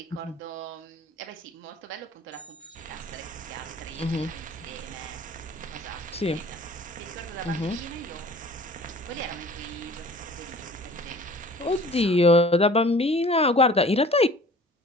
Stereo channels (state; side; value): normal; both; correlation 0.47